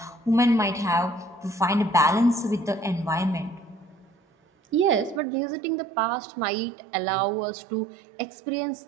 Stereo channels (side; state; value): left; drops out; at 5.2 s